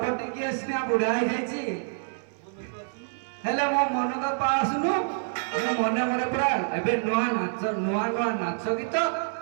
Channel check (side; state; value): left; silent; 60 dB below the other